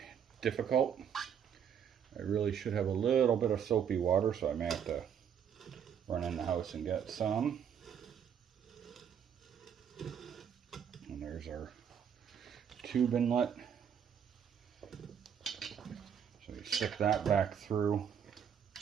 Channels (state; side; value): quieter; left; 8.1 dB